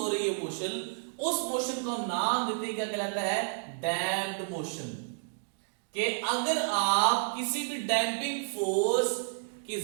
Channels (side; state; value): left; silent; digital silence